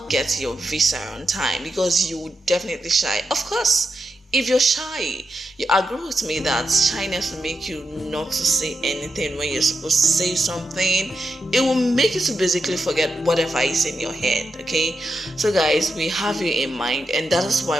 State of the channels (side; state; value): both; normal; correlation 0.87